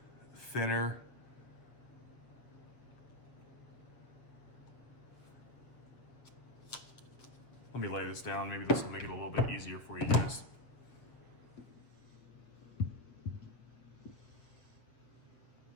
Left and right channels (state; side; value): late; right; 7.5 ms